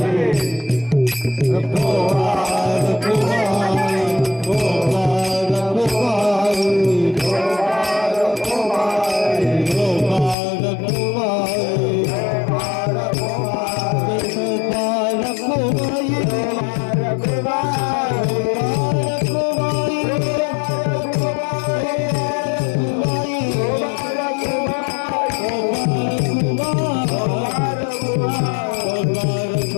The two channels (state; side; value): drops out; right; at 10.4 s